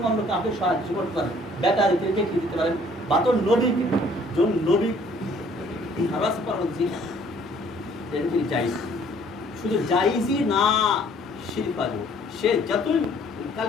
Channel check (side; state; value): both; normal; correlation 0.58